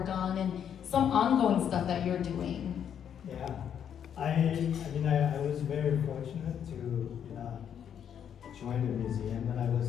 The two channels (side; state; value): right; quieter; 8.7 dB